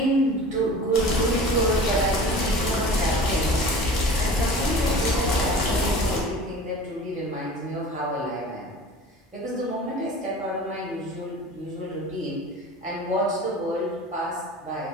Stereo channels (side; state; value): both; normal; correlation 0.40